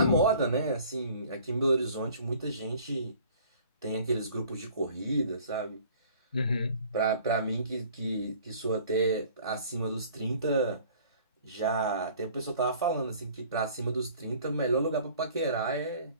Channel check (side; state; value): both; inverted; correlation -0.51